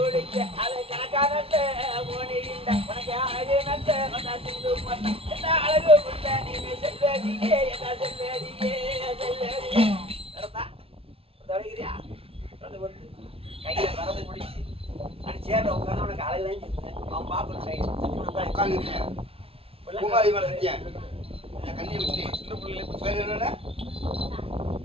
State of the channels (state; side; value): late; left; 0.27 ms